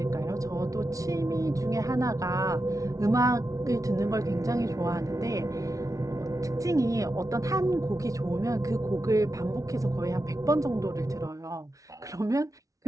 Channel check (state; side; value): late; left; 0.17 ms